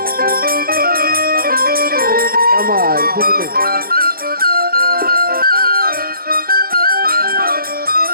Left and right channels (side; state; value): left; late; 0.43 ms